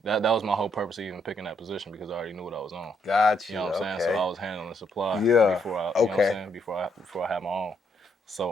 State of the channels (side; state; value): both; normal; correlation 0.74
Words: That was my whole purpose of even picking that position because I already knew what I was on. Gotcha. You know what I'm saying? So I was handling the supply before I you know what I'm saying? Before I had my own. So